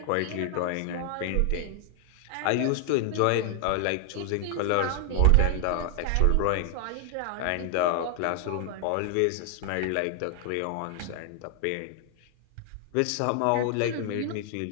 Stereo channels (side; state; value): both; different; correlation 0.00